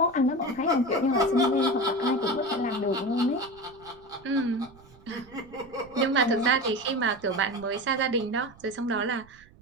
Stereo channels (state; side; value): noise; right; rumble, 25 dB below the sound